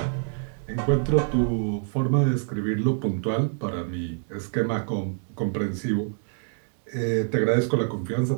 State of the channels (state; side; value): silent; left; 61 dB below the other